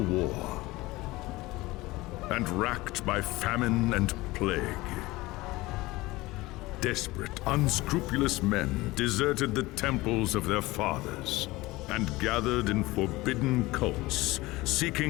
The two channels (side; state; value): right; quieter; 20.2 dB